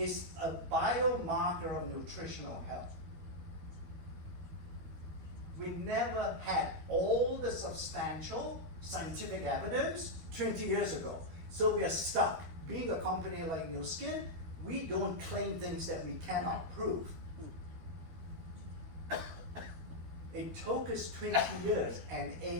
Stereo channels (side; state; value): left; late; 12 ms